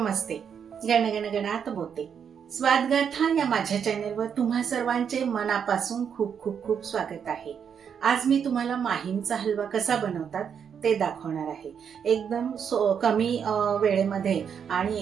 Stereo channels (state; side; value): quieter; left; 7.5 dB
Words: गण गणात बोलते. स्वादगाथा या माझ्या चॅनेलवर तुम्हा सर्वांचे मनापासून खूप खूप खूप स्वागत आहे. आज मी तुम्हाला माहीमचा हलवा कसा बनवतात ते दाखवणार आहे. एकदम कमी वेळेमध्ये आणि